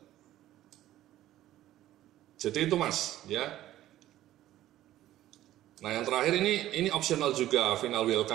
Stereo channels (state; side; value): quieter; left; 14.0 dB